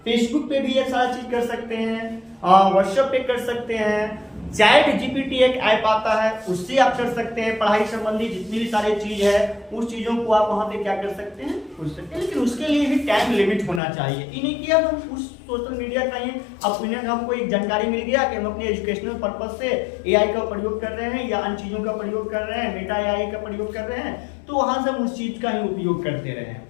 फेसबुक पे भी ये सारा चीज कर सकते हैं, व्हाट्सएप पे कर सकते हैं, चैट GPT एक ऐप आता है उससे आप कर सकते हैं। पढ़ाई संबंधी जितनी भी सारी चीज है उस चीजों को आप वहां पे क्या कर सकते हैं, पूछ सकते हैं, लेकिन उसके लिए भी टाइम लिमिट होना चाहिए। ये नहीं कि अब हम उस सोशल मीडिया का ही ओपिनियन, हमको एक जानकारी मिल गया कि हम अपने एजुकेशनल पर्पज से AI का प्रयोग कर रहे हैं या अन्य चीजों का प्रयोग कर रहे हैं, मेटा AI का प्रयोग कर रहे हैं, तो वहां से हम उस चीज का ही उपयोग करते रहे हैं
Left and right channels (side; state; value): right; drops out; at 13.8 s